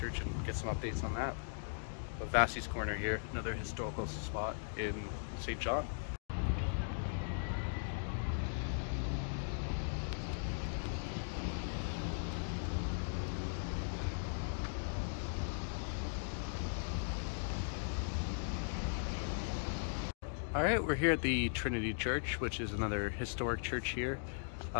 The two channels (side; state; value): right; silent; digital silence